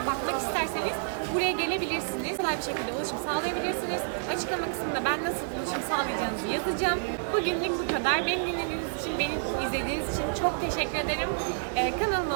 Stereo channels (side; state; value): left; silent; digital silence